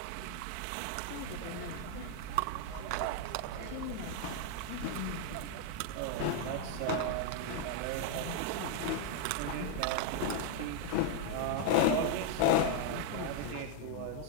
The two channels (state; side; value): different; both; correlation 0.00